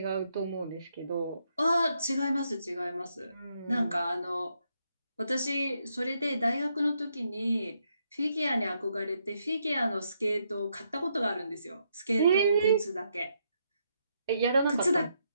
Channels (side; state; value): both; inverted; correlation -0.77